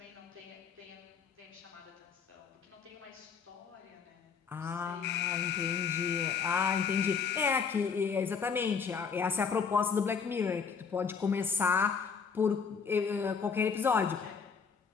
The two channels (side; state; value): right; quieter; 6.0 dB